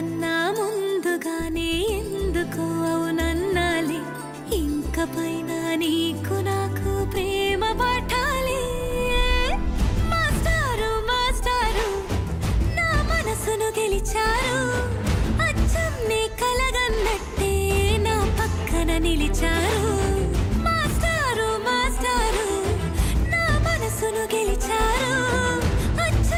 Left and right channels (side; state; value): both; identical; correlation 1.00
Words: ముందుగానే ఎందుకు అవునన్నాలే. ఇంక పైన నీకు నాకు ప్రేమ పాఠాలే. మాస్టారు మాస్టారు నా మనసును గెలిచారు, అచ్చం నీ కలగన్నట్టే నా పక్కన నిలిచారు. మాస్టారు మాస్టారు నా మనసును గెలిచారు,